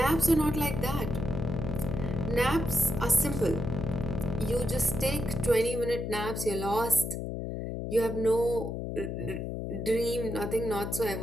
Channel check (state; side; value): noise; left; hum, 4 dB below the sound